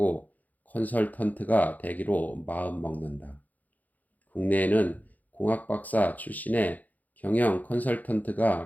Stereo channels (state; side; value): late; right; 0.080 ms